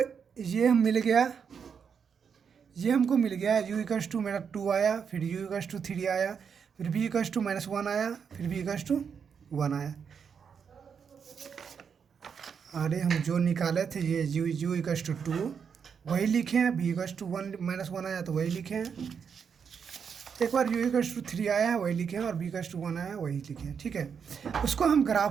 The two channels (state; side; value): quieter; left; 6.7 dB